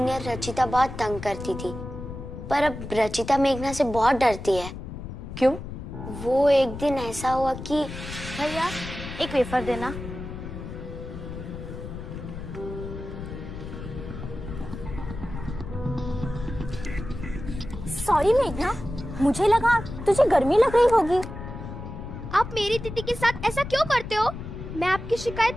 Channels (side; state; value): left; noise; rumble, 9 dB below the sound